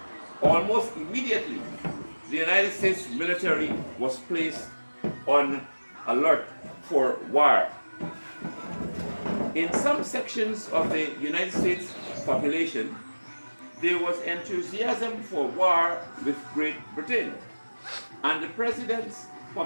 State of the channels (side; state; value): both; inverted; correlation -1.00